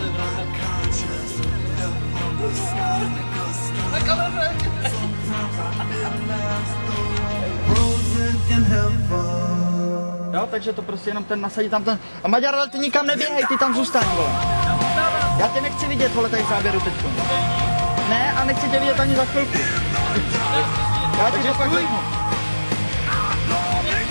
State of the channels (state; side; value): inverted; both; correlation -1.00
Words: Jo, takže to prostě jenom ten nasadí tam ten. A Maďar, ale ty nikam neběhej, ty tam zůstaň, vole. Já tě nechci vidět, vole, tady v záběru teďko. Ne, a nechci tě vidět ani za chvilku. Já ti to pak řeknu.